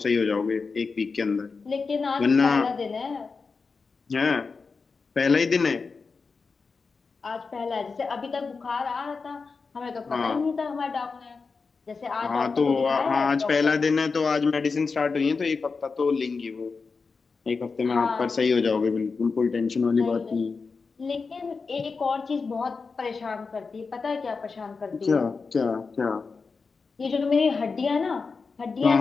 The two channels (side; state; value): right; quieter; 4.6 dB